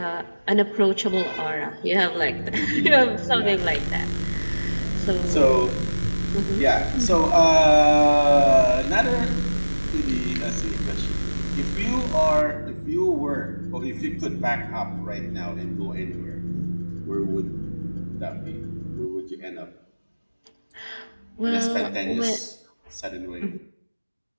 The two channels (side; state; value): both; inverted; correlation -1.00